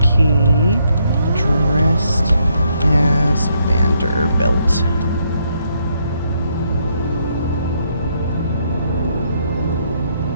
Key dressed as Vanderbilt.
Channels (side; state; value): both; inverted; correlation -0.74